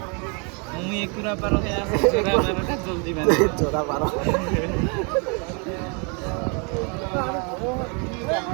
মুই একুৰা পাৰো হে আছে জোৰা মাৰতে জলদি মানে জোৰা পাৰ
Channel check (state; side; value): quieter; left; 34.6 dB